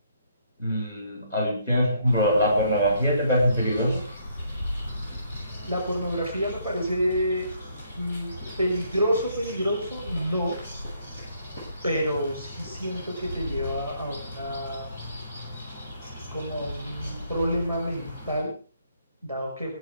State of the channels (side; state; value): both; inverted; correlation -0.70